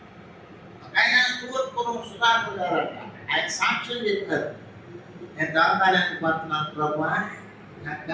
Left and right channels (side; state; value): both; identical; correlation 1.00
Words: ఆయన తూర్పురం సుధాకర్ గారు ఆయన సాక్ష్యం చెప్పారు. నేను దాకానికి పోతున్నాను ప్రభా, నాకు